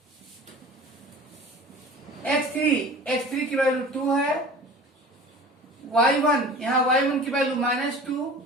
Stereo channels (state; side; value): normal; both; correlation 0.41